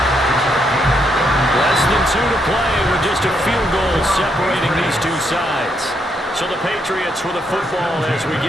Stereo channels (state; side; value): normal; both; correlation 0.77